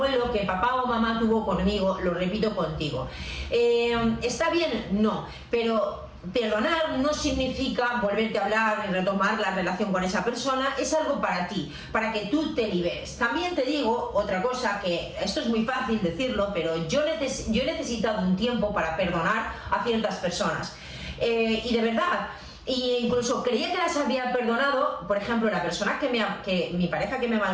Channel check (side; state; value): both; identical; correlation 1.00